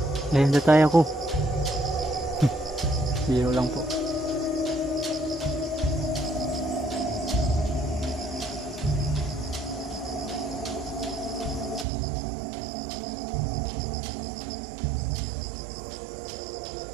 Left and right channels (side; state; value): left; drops out; at 11.9 s